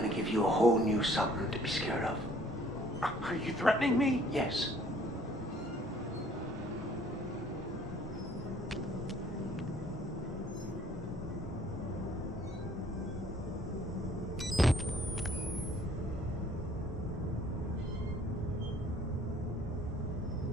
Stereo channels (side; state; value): both; normal; correlation 0.58